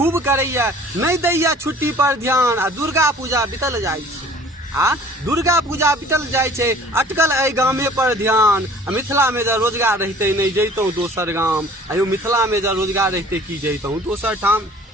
करैया नहीं दैया छुट्टी पर ध्यान। आ दुर्गा पूजा बीतल जाइ छै, आ दुर्गा पूजा बीतल जाइ छै, अटकल एहि गामे पर ध्यान। मिथिला में जब रोजगार रहते नहीं जैतौं दोसर गाम। आयो मिथिला में जब रोजगार रहते कि जैतौं दोसर ठाम।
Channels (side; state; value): both; normal; correlation 0.49